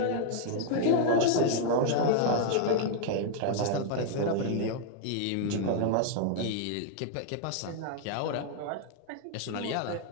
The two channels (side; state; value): both; different; correlation 0.00